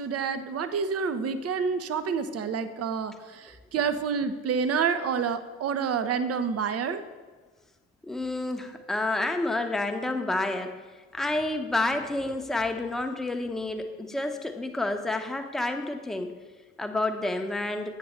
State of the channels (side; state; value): both; normal; correlation 0.48